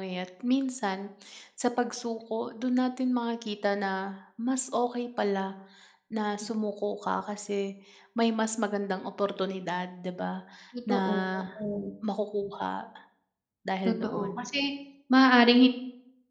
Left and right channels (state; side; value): identical; both; correlation 1.00